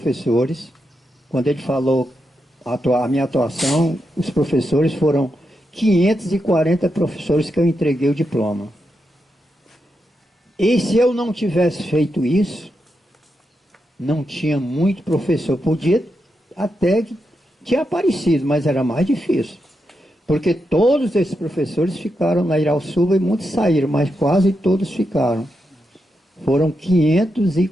Quando ele falou a minha atuação, os professores foram 540 professores que eu entreguei o diploma. E se eu não tivesse feito isso, não tinha muito professor. Podia até que tinha aparecido, mas era mais difícil. Porque todos esses professores ficaram na Irauçuba e muitos saíram, mas quase todos ficaram. Foram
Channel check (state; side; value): normal; both; correlation 0.85